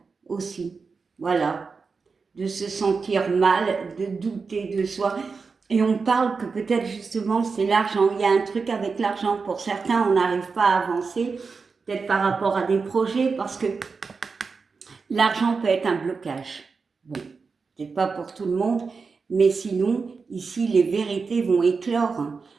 aussi. Voilà. De se sentir mal, de douter de soi. Et on parle que peut-être justement c'est l'argent. Il y a un truc avec l'argent. Pour certains, on n'arrive pas à avancer, peut-être par rapport à des projets, parce que l'argent peut être un blocage. Bon, c'est pas pour tout le monde, mais sinon, ici, les vérités vont éclore.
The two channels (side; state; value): left; quieter; 4.8 dB